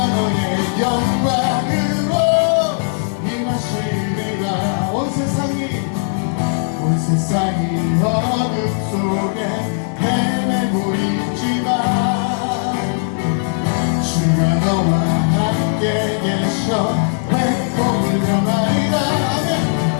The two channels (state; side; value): silent; right; digital silence